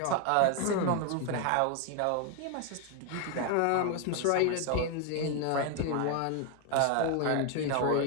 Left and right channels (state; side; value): different; both; correlation 0.00